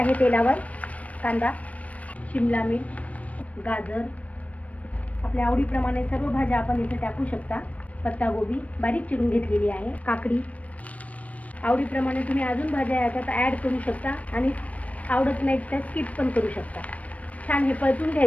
तेलावर. कांदा, शिमला मिर्च, गाजर, आपल्या आवडीप्रमाणे सर्व भाज्या आपण इथे टाकू शकता. पत्तागोबी बारीक चिरून घेतलेली आहे. काकडी, आवडीप्रमाणे तुम्ही अजून भाज्या याच्यात ॲड करू शकता आणि आवडत नाही तर स्किप पण करू शकता. छान हे परतून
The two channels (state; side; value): late; right; 0.067 ms